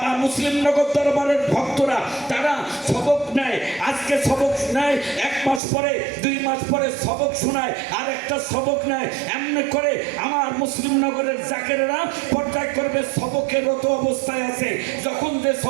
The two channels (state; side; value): drops out; left; at 5.6 s